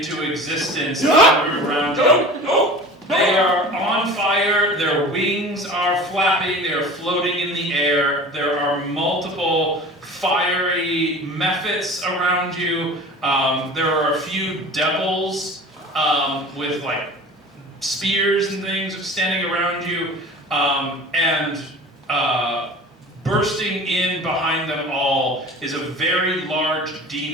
existence in the room around you. They are on fire, their wings are flapping, they are floating in the air. There are multiple fiery mephits around you. There are a few devils with like spears and things standing around you. And bursting in behind them all is a very large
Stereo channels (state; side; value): normal; both; correlation 0.39